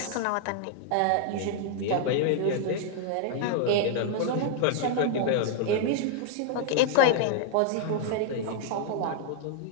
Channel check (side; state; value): both; different; correlation 0.00